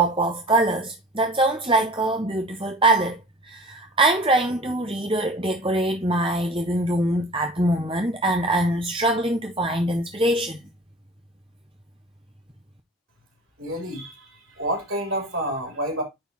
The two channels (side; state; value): both; normal; correlation 0.40